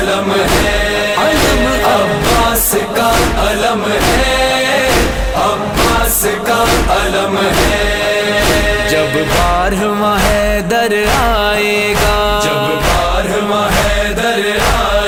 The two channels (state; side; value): identical; both; correlation 1.00